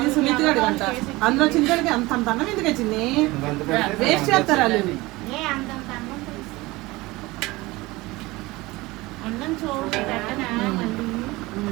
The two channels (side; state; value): left; quieter; 21.1 dB